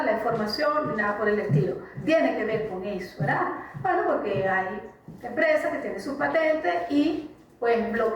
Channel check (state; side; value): identical; both; correlation 1.00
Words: la información ni nada por el estilo. Tiene que ver con eso, ¿verdad? Bueno, porque hay empresas que tienen sus patentes y pues